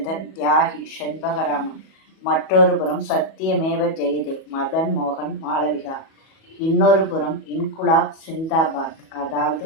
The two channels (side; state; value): right; late; 37 ms